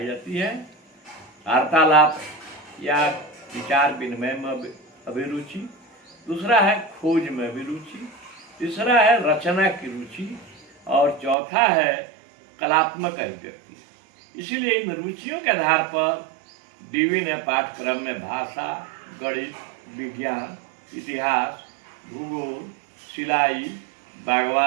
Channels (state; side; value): drops out; left; at 11.4 s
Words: जाती हैं। वार्तालाप या विचार विनिमय में अभिरुचि, दूसरा है खोज में अभिरुचि, तीसरा है रचना की रुचि और चौथा है कलात्मक अभिव्यक्ति। इसीलिए इन रुचियों के आधार पर डीवी ने पाठ्यक्रम में भाषा, गणित, विज्ञान, इतिहास, भूगोल, सिलाई,